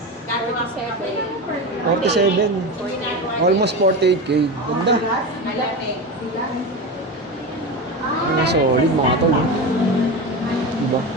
47. Almost 48k. Ganda. Solid mga tol. Diba?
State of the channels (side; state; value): both; normal; correlation 0.22